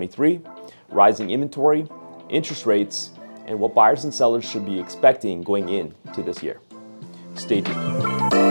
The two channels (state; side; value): inverted; both; correlation -1.00